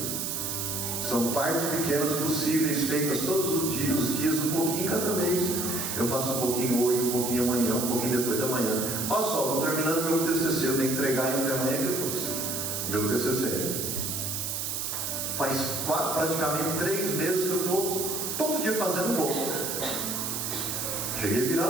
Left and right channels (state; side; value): noise; right; hiss, 2 dB below the sound